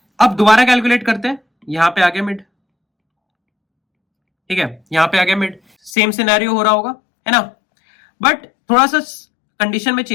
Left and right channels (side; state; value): right; drops out; at 5.9 s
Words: अब दोबारा कैलकुलेट करते हैं। यहां पे आ गया मिड, ठीक है, यहां पे आ गया मिड, सेम सिनेरियो हो रहा होगा, है ना, बट थोड़ा सा कंडीशन में